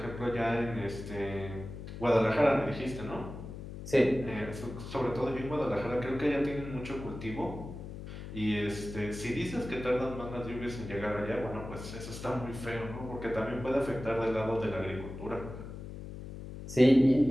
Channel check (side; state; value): left; noise; hum, 10 dB below the sound